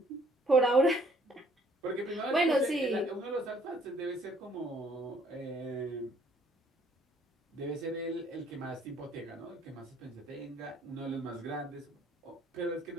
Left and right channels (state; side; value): normal; both; correlation 0.62